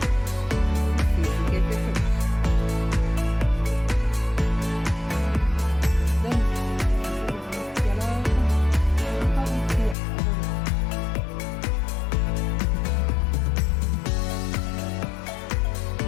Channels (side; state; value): right; drops out; at 10.0 s